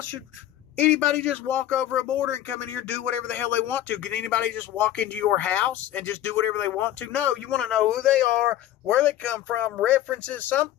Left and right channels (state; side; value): quieter; right; 12.7 dB